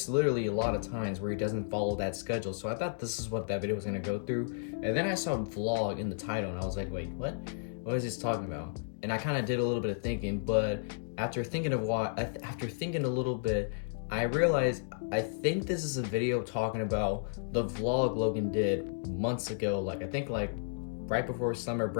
literally a lot of times where he doesn't follow that schedule, so I thought this is what that video was gonna go through, and then I saw vlog in the title, and I was like, wait, what? What is this talking about? And I kind of did a little bit of thinking, but after thinking a little bit, I realized I think this is a video talking about the vlog Logan did months ago. Like I think like right before summer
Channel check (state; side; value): silent; right; digital silence